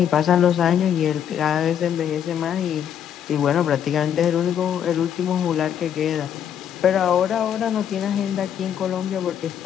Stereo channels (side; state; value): right; quieter; 9.1 dB